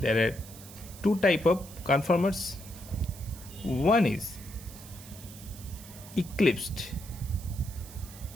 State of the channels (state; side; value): noise; right; hiss, 17 dB below the sound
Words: are two types of conformers. One is eclipsed